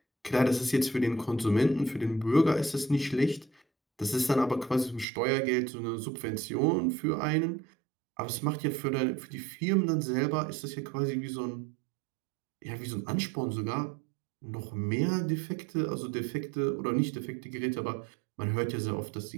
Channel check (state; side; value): drops out; left; at 5.1 s